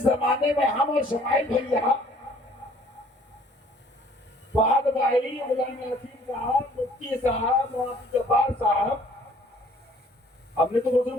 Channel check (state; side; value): normal; both; correlation 0.57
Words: زمانے میں ہم اور شمائل بھیا، فہد بھائی، غلام نصیر صاحب، مفتی صاحب، مولانا جبار صاحب، ہم نے تو